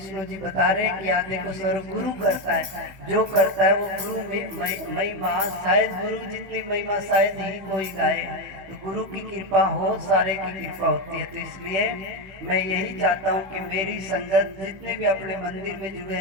जी बता रहे हैं कि आदि को सर्व गुरु करता है, जो करता है वो गुरु में महिमा, शायद गुरु जितनी महिमा शायद ही कोई गाए। तो गुरु की कृपा हो, सारे की कृपा होती है। तो इसलिए मैं यही चाहता हूँ कि मेरी संगत जितने भी अपने मंदिर में जुड़े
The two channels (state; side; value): late; left; 15 ms